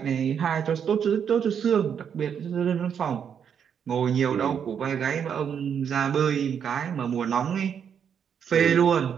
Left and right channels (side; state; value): left; quieter; 7.8 dB